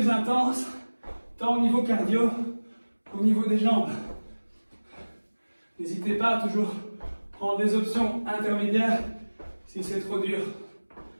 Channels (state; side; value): inverted; both; correlation -1.00